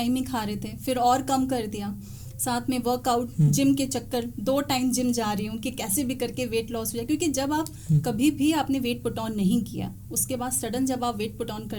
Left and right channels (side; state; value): both; identical; correlation 1.00